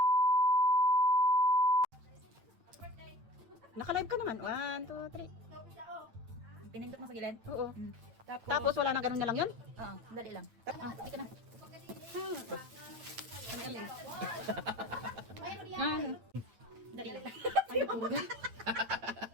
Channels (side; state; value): left; late; 8.6 ms